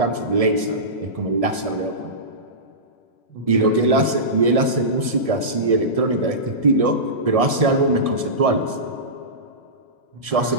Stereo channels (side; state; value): left; late; 1.7 ms